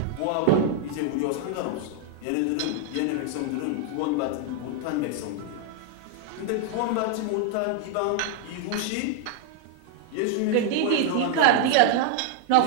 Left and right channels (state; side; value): different; both; correlation 0.00